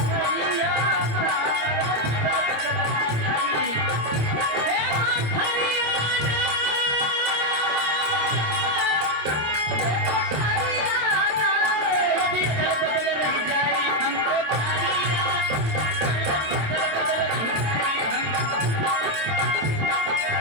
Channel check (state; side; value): late; left; 26 ms